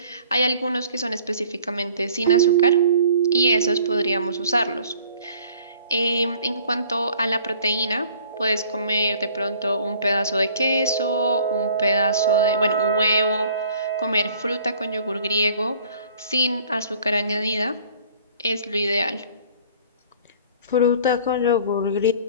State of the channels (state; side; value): inverted; both; correlation -0.53